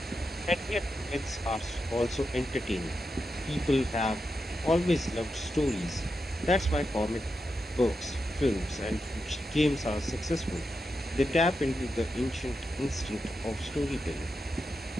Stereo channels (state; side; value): normal; both; correlation 0.87